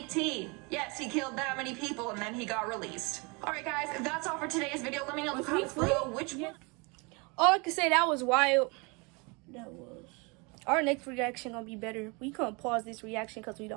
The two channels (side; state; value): left; quieter; 29.6 dB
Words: Yes, he killed that many people and then he got released. All right, guys, that's all for today's video. Let me know in the comments below which one. All I can say, that was wild. That was. Our next reaction gonna be better. We couldn't pause this reaction because we